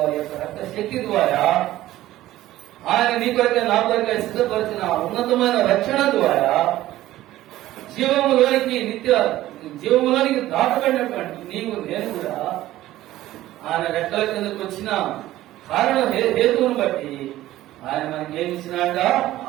యొక్క రక్త శక్తి ద్వారా ఆయన నీ కొరకే నా కొరకే సిద్ధపరిచిన ఉన్నతమైన రక్షణ ద్వారా జీవములోనికి దాటబడినటువంటి నీవు నేను కూడా ఆయన రెక్కల కిందకు వచ్చిన కారణం హేతువును బట్టి ఆయన మనకి ఏమి ఇచ్చినాక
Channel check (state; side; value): quieter; left; 15.0 dB